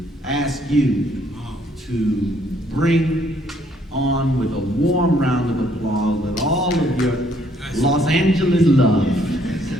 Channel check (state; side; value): normal; both; correlation 0.66